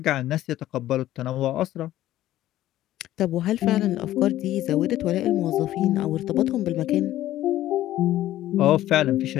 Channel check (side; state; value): right; quieter; 14.0 dB